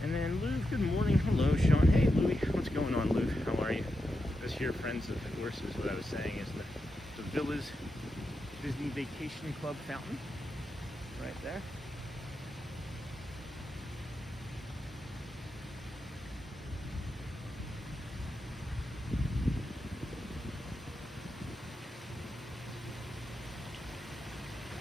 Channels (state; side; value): normal; both; correlation 0.87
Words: And then Lou, good morning. Hello, Sean. Hey, Louie. What's going on, Lou? How are you? This here, Friends of the Horses, what I was saying is the Villa's Disney Vacation Club fountain. Right there.